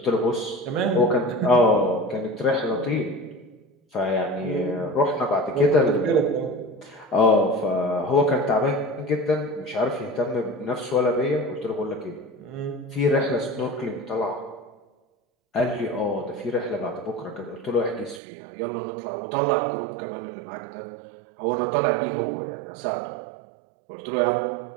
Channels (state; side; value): drops out; left; at 18.2 s